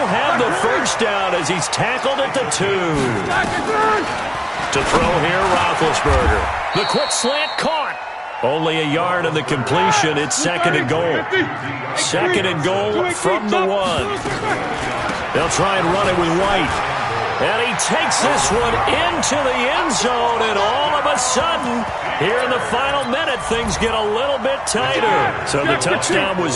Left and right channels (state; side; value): identical; both; correlation 1.00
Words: have the 1st down as he's tackled at the 2. To throw here, Roethlisberger. The quick slant caught. Only a yard on the completion. It's 2nd and goal. 2nd and goal from the 1. They'll try and run it with White. And he takes this one into the end zone, and all of a sudden, here in the final minute, things get a little bit tighter. So the touchdown was